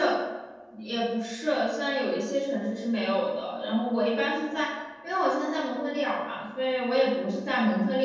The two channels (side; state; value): both; identical; correlation 1.00